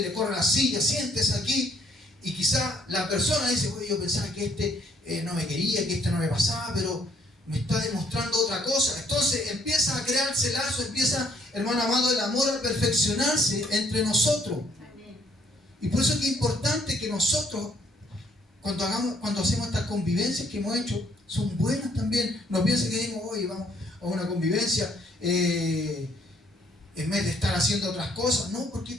le corre la silla, siéntese aquí, y quizá la persona dice, oye, yo pensaba que este no me quería, que este no me pasaba, pero me está demostrando otra cosa. Entonces empieza a crearse lazo, empieza, hermano amado, el amor a perfeccionarse entre nosotros. Y por eso es que es importante que nosotros, cuando hacemos estas convivencias que hemos hecho, son buenas también. No piensen que digamos, oye, vamos a una convivencia en vez de estar haciendo otras cosas. No, porque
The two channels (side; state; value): both; normal; correlation 0.66